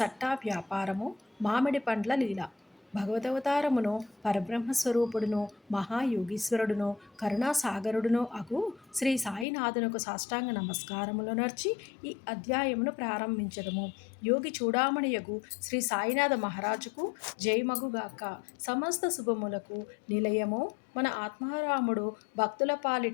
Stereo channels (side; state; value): right; drops out; at 9.5 s